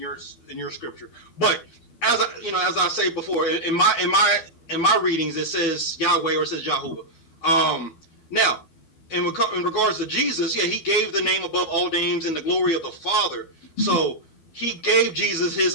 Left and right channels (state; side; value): late; right; 12 ms